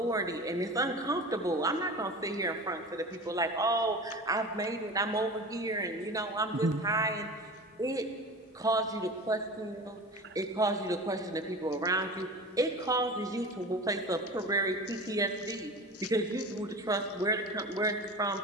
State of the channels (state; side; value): normal; both; correlation 0.33